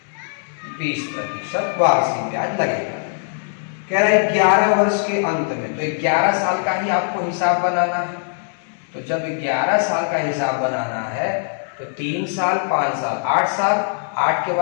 20% वार्षिक ब्याज लगेगा। कह रहा है 11 वर्ष के अंत में, तो 11 साल का ही आपको हिसाब बनाना है। तो जब 11 साल का हिसाब बनाना है तो 3 साल 5 साल 8 साल, 8 के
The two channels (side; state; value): right; silent; 65 dB below the other